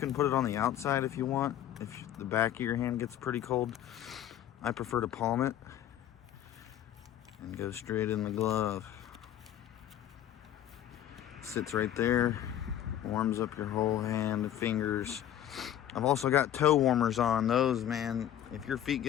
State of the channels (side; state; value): right; quieter; 11.2 dB